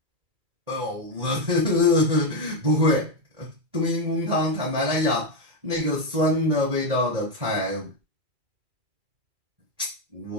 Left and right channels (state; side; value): late; left; 2.3 ms